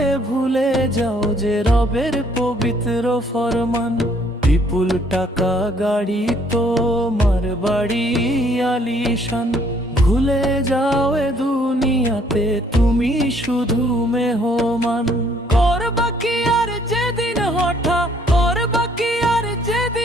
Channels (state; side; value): normal; both; correlation 0.64